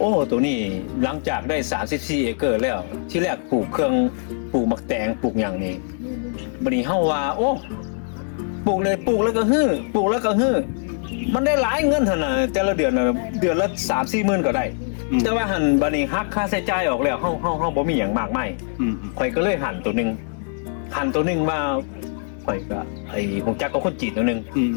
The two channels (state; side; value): silent; right; 64 dB below the other